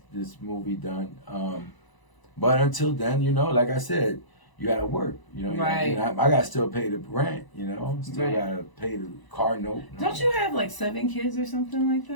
movie done. But until then, you know, like I said, you gotta work. You know, Right. I gotta still pay the rent. You know, still Right. gotta pay the car note. don't you have like 7 kids or something like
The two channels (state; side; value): late; right; 1.0 ms